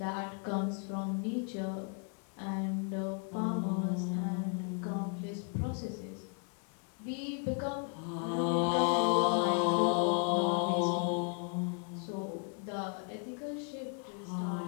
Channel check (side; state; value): right; quieter; 39.4 dB